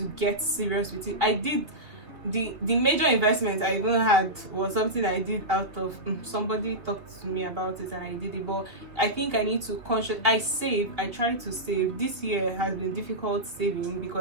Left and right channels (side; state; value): left; late; 3.1 ms